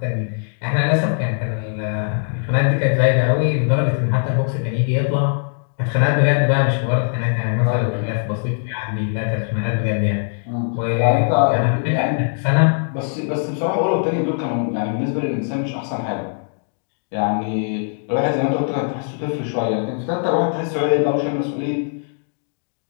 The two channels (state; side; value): silent; right; 65 dB below the other